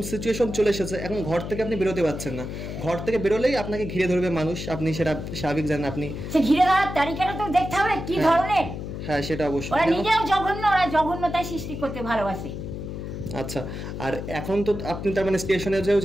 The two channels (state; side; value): noise; left; hum, 7 dB below the sound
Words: সিচুয়েশন চলে এসেছে, এখন ঘর থেকে আপনি বেরোতে পারছেন না, ঘর থেকে বেরোলেই আপনাকে ঘিরে ধরবে মানুষ, আপনি সেটা স্বাভাবিক জানেন। আপনি সে ঘিরে ধরার তালিকাটা তো দেখতে হবে কি ধরনের। হ্যাঁ, সেটা অবশ্যই। ওরা নিজেও জঘন্য, ওরা জঘন্যতায় সৃষ্টি করতে ভালোবাসে। আচ্ছা, আর এখন তো আপনি তার মানে স্টেশনে